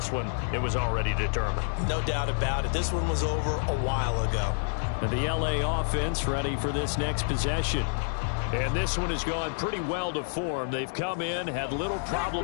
one, it was already determined. No doubt about it. This one was over a while ago. And the LA offense ready for this next possession. And this one has gone pretty well to form. They've come in, had little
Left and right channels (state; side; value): silent; right; digital silence